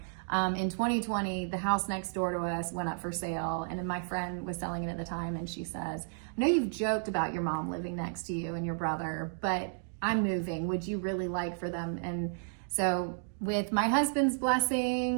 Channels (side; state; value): left; silent; digital silence